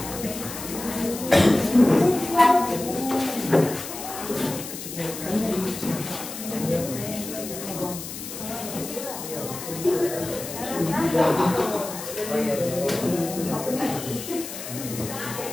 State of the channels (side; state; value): left; noise; hiss, 9 dB below the sound